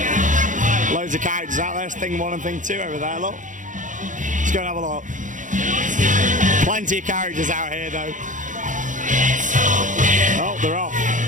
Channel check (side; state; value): left; late; 0.37 ms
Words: Loads of characters out there, Thing 1 and Thing 2 over there, look. Let's go and have a look. Plenty of characters out here though. Oh, they're off.